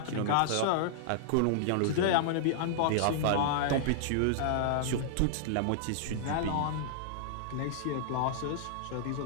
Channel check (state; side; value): different; both; correlation -0.01